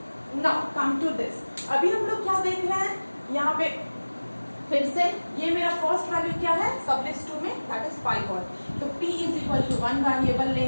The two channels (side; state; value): both; inverted; correlation -1.00